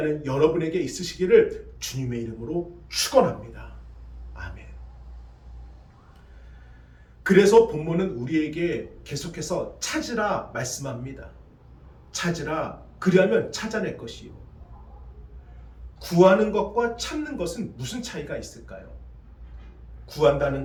여러분에게 있으시기를 주님의 이름으로 축원합니다. 아멘. 그래서 본문은 우리에게 계속해서 찾으라 말씀합니다. 찾으라, 그리하면 찾아낼 것이요. 구하는 것과 찾는 것은 무슨 차이가 있을까요? 구한다는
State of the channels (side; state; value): both; identical; correlation 1.00